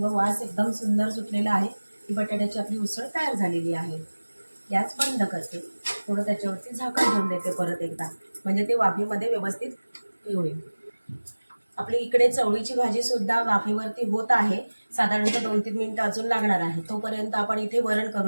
वास एकदम सुंदर सुटलेला आहे. ही बटाट्याची आपली उसळ तयार झालेली आहे. गॅस बंद करते. थोडं त्याच्यावरती झाकण ठेवून देते परत एकदा, म्हणजे ते वाफेमध्ये व्यवस्थित होईल. आपली इकडे चवळीची भाजी सुद्धा वाफेवरती होत आहे. साधारणतः 2-3 मिनिटं अजून लागणार आहे. तोपर्यंत आपण इथे वरण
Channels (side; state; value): both; inverted; correlation -1.00